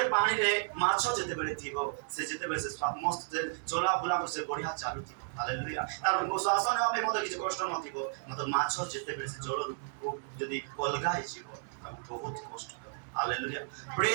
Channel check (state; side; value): silent; left; digital silence